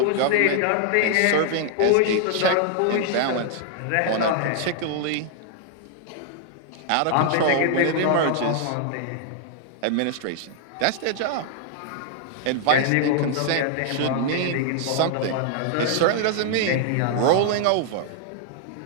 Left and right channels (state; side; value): different; both; correlation 0.00